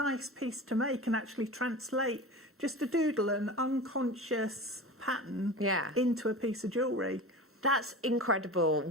piece to make and actually translate just a doodle, an unconscious pattern into a piece of jewellery. That's incredible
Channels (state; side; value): normal; both; correlation 0.32